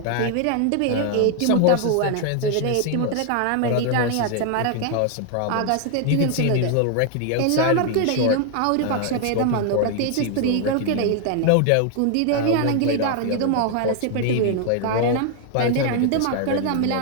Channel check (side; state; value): both; different; correlation 0.00